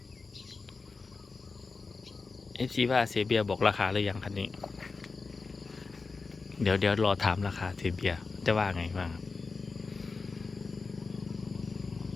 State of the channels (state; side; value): quieter; right; 4.3 dB